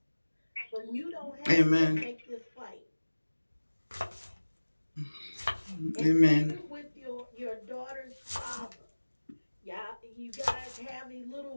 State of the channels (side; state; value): both; inverted; correlation -1.00